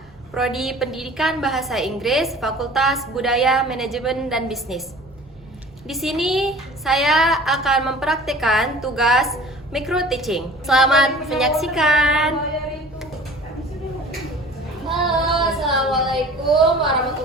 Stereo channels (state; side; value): normal; both; correlation 0.45